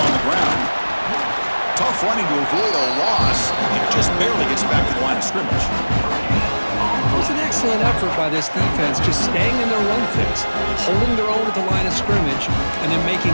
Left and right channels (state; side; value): inverted; both; correlation -1.00